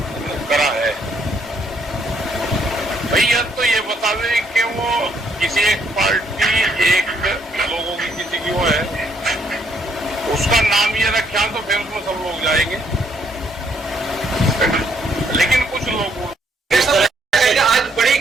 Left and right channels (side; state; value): both; normal; correlation 0.70